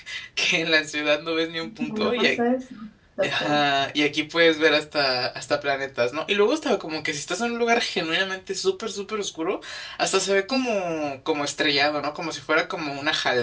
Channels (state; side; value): identical; both; correlation 1.00